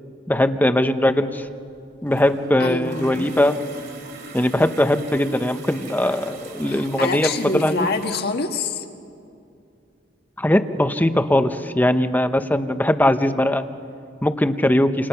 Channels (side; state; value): both; normal; correlation 0.83